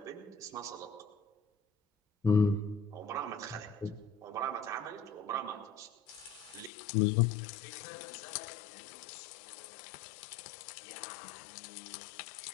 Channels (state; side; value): drops out; right; at 6.7 s